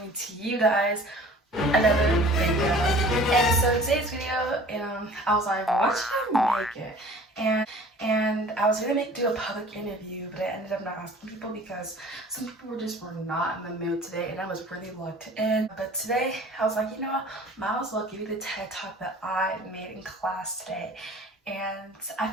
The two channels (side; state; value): both; normal; correlation 0.47